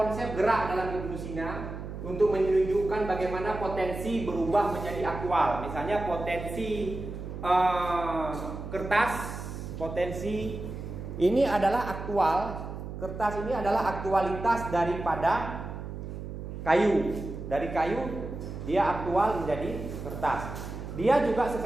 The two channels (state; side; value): noise; right; hum, 8 dB below the sound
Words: gerak dalam Ibnu Sina untuk menunjukkan bagaimana potensi berubah menjadi aktual. Misalnya potensi kertas, potensi ini adalah aktual. Kertas ini adalah aktualitas daripada kayu. Dari kayu dia aktual menjadi kertas. Dia juga